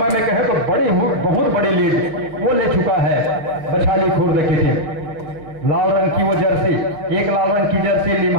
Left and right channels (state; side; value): late; left; 6.2 ms